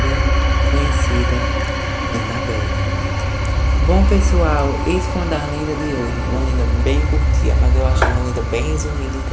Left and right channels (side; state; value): both; identical; correlation 1.00